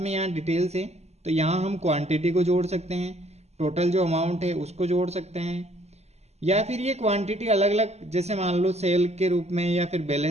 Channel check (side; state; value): left; late; 0.31 ms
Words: यहाँ डिटेल्स है, तो यहाँ हम क्वांटिटी को जोड़ सकते हैं, टोटल जो अमाउंट है उसको जोड़ सकते हैं, या फिर ये क्वांटिटी अलग अलग जैसे मान लो सेल के रूप में या फिर